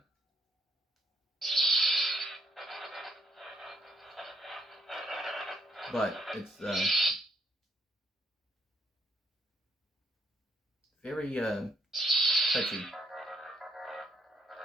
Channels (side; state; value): both; normal; correlation 0.72